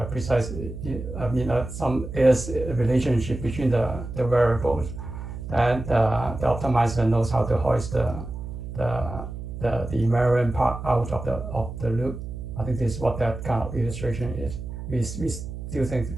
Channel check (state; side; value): noise; right; hum, 9 dB below the sound